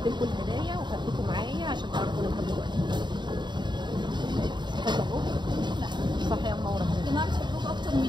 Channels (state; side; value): late; left; 0.22 ms